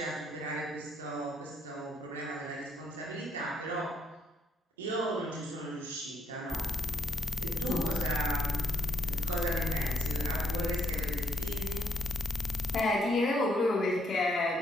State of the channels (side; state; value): both; normal; correlation 0.74